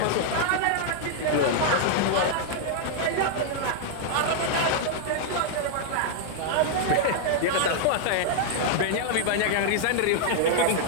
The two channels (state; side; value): different; both; correlation -0.01